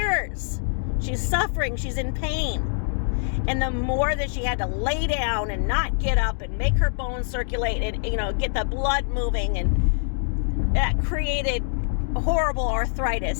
She's suffering. She's in pain. And the more that she had to lay down and not get up and make her bones circulate and, get the blood moving, and that created horrible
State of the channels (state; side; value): silent; right; digital silence